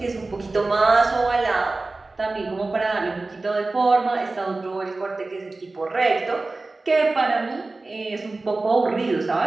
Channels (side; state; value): left; quieter; 3.3 dB